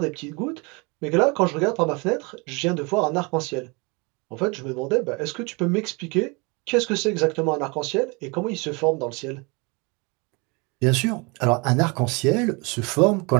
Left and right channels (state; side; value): quieter; left; 29.1 dB